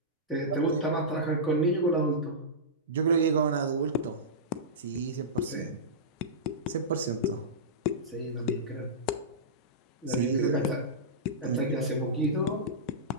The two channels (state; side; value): normal; both; correlation -0.16